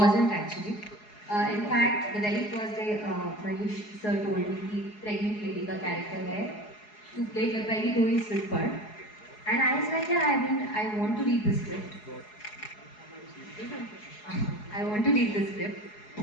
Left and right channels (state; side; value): late; right; 4.8 ms